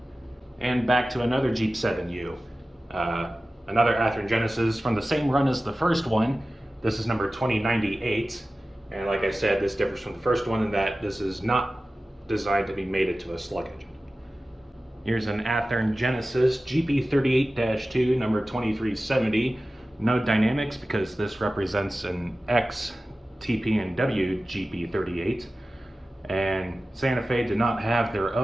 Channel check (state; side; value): normal; both; correlation 0.95